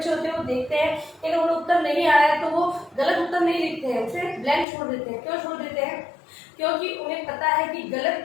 होते हैं वो देखते हैं कि अगर उन्हें उत्तर नहीं आ रहा है तो वो गलत उत्तर नहीं लिखते हैं, उसे ब्लैंक छोड़ देते हैं। क्यों छोड़ देते हैं? क्योंकि उन्हें पता है कि गलत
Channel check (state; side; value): drops out; right; at 4.7 s